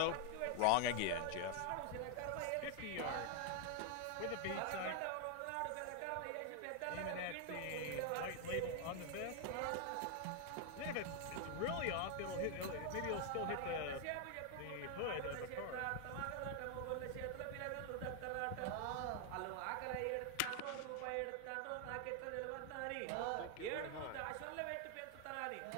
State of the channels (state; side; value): different; both; correlation 0.00